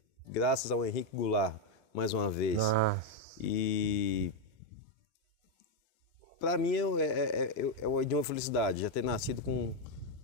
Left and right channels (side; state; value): both; normal; correlation 0.03